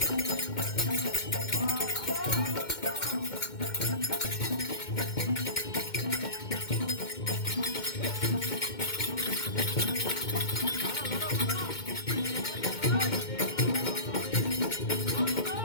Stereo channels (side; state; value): right; late; 2.2 ms